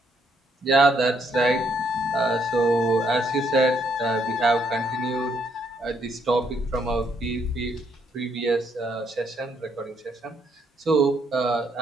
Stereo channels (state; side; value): normal; both; correlation 0.72